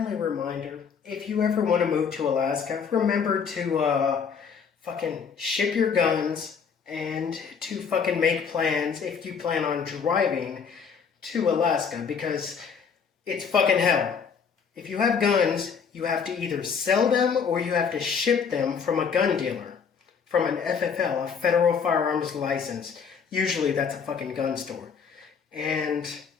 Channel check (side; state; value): right; quieter; 6.3 dB